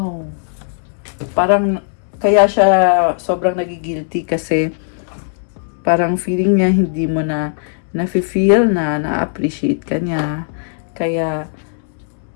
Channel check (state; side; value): silent; right; digital silence